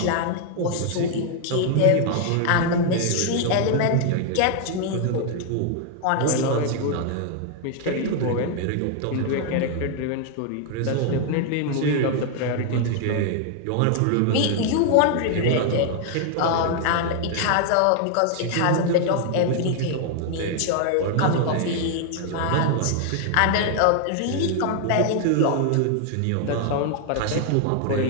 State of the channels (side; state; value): both; different; correlation 0.00